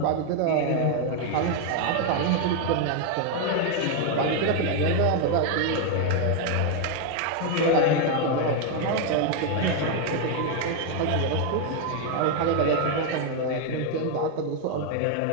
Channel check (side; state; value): both; different; correlation 0.01